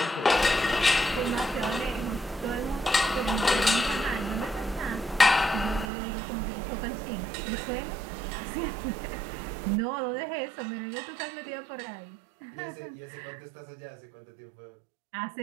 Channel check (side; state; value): left; drops out; at 5.9 s